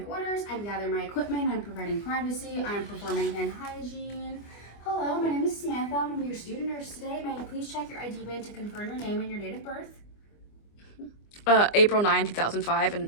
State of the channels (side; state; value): right; late; 24 ms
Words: orders, I'm gathering my equipment, I'm providing privacy, I'm performing hand hygiene. Hello, my name is Samantha. I'm your student nurse today. May I please check your ID band to confirm your name and your date of birth? April 9, 2005,